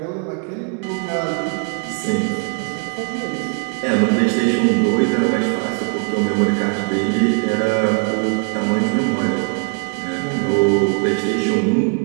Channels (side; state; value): left; quieter; 39.3 dB